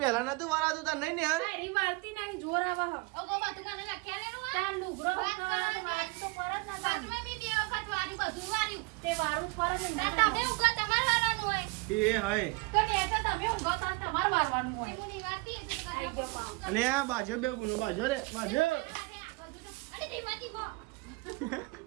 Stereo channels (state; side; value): quieter; left; 26.3 dB